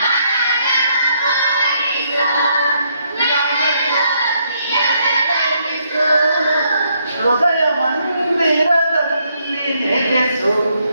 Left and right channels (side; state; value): both; inverted; correlation -0.73